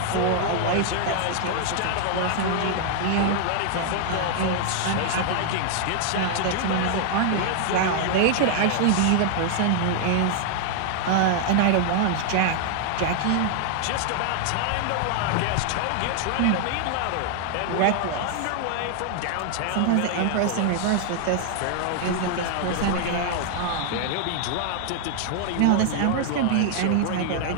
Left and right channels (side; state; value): both; different; correlation 0.00